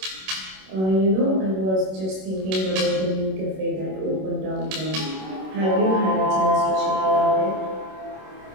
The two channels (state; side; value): late; left; 26 ms